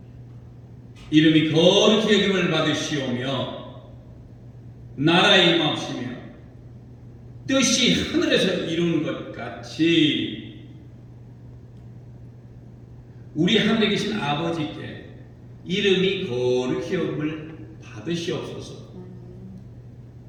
이름이 거룩히 여김을 받으시오며 나라의 임하시며 뜻이 하늘에서 이룬 것 같이 우리 하늘에 계신 아버지께 이름이 거룩히 여김을 받으시옵소서.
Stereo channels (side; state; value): both; identical; correlation 1.00